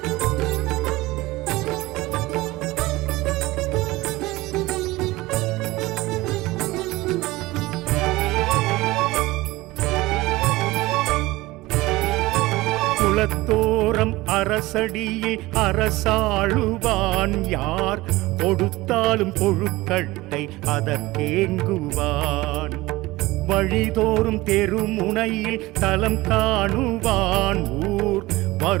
குலத்தோரம் அரசடியில் அரசாளுவான். யார் கொடுத்தாலும் கொழுக்கட்டை அதற்கேங்குவான். வழிதோறும் தெருமுனையில் தலம் காணுவான். ஊர்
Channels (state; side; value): quieter; left; 19.7 dB